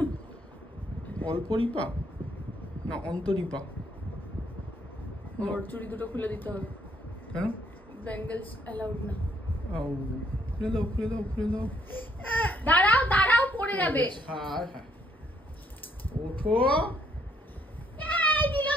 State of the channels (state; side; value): normal; both; correlation 0.69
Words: অল্পরিপা না অন্তরিপা? ওর চুড়ি দুটো খুলে দিতে হবে। কেন? ব্যাঙ্গেলস অ্যালাউড না। খুলে দাও খুলে দাও খুলে দাও। দাঁড়াও দাঁড়াও, পড়ে যাবে। হ্যাঁ হ্যাঁ, ওঠো। এই দিল